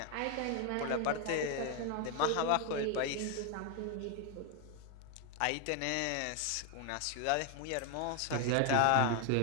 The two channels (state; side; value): different; both; correlation 0.01